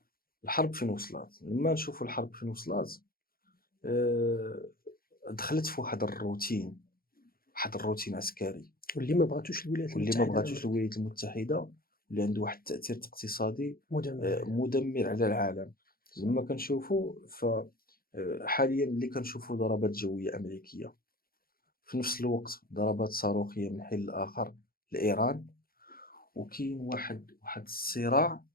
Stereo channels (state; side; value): late; right; 0.43 ms